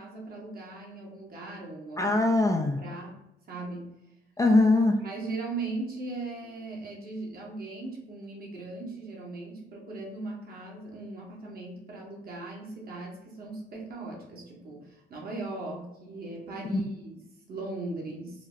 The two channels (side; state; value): both; normal; correlation 0.76